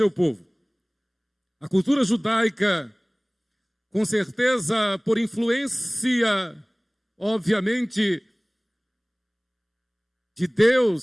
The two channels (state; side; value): identical; both; correlation 1.00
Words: povo. A cultura judaica, com certeza por influência, obviamente, de